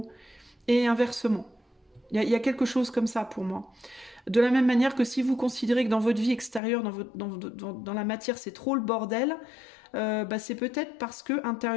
Et inversement. Il y a quelque chose comme ça pour moi. De la même manière que si vous considérez que dans votre vie extérieure, dans la matière, c'est trop le bordel, bah c'est peut-être parce que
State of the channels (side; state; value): right; drops out; at 6.6 s